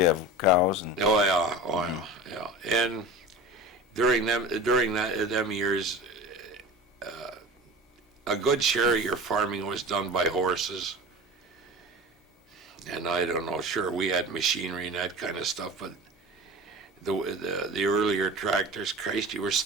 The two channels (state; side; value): normal; both; correlation 0.34